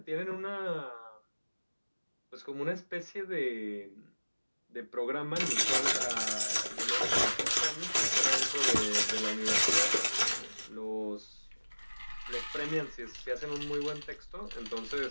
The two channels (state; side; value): inverted; both; correlation -1.00